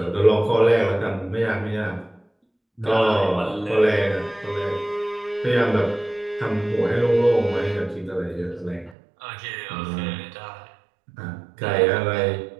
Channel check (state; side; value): drops out; left; at 9.0 s